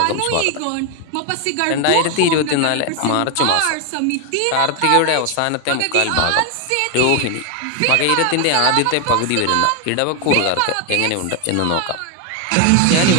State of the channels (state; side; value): different; both; correlation 0.01